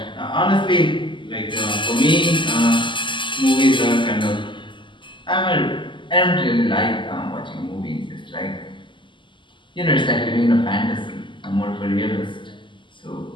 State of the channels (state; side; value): late; right; 0.24 ms